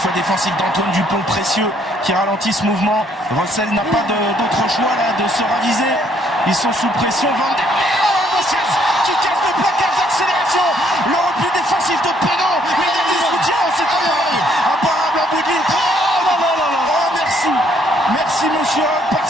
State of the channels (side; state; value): both; normal; correlation 0.67